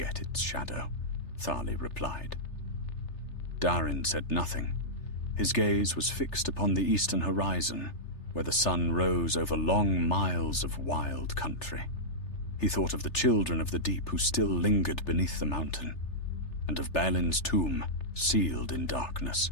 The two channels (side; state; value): right; late; 3.3 ms